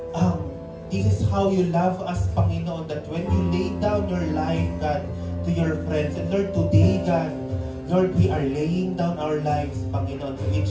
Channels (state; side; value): identical; both; correlation 1.00